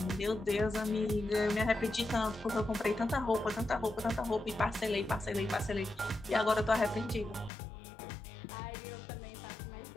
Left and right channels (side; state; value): right; drops out; at 7.5 s